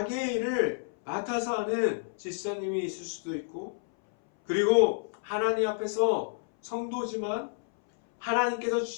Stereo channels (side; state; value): right; silent; 58 dB below the other